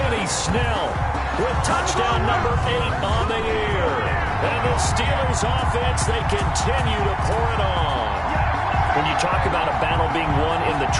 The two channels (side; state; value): both; identical; correlation 1.00